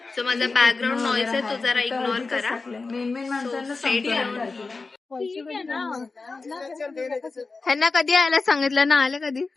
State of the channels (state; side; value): quieter; right; 4.0 dB